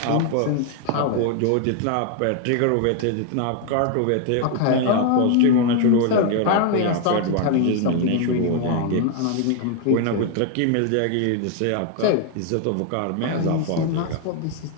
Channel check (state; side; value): different; both; correlation 0.01